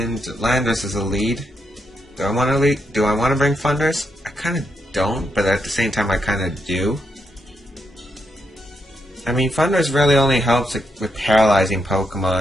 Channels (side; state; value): both; normal; correlation 0.80